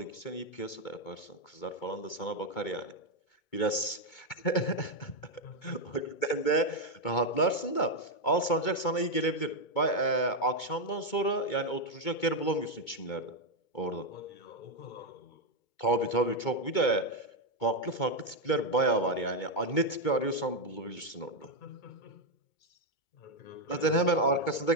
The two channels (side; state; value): right; late; 2.2 ms